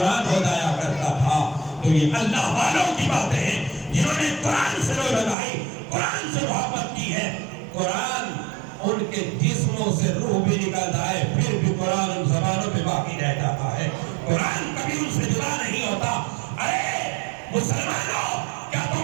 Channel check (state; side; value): drops out; left; at 5.4 s